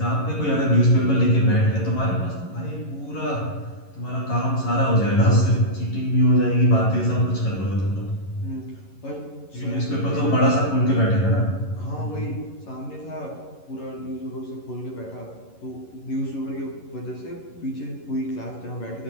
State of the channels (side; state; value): right; late; 11 ms